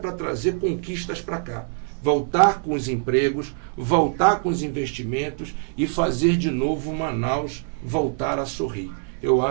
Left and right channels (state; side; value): silent; left; 63 dB below the other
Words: trazer conquistas para cá. Voltar com os empregos, voltar com os investimentos e fazer de novo Manaus voltar a sorrir. Eu